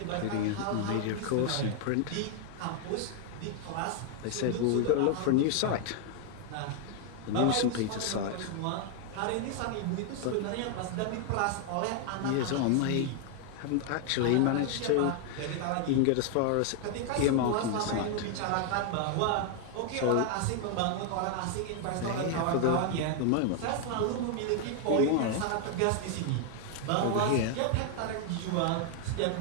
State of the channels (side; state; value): both; different; correlation 0.00